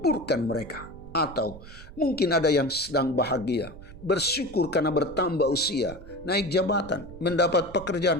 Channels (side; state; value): right; noise; rumble, 16 dB below the sound